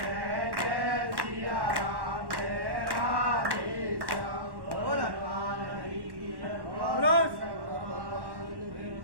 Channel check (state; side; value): late; left; 1.1 ms